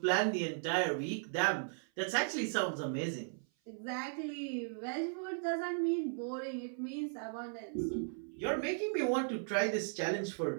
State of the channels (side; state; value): left; silent; 53 dB below the other